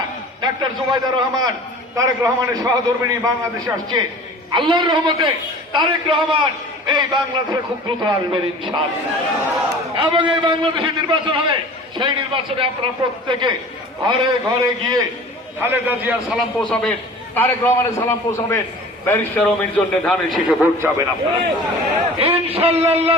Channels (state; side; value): normal; both; correlation 0.42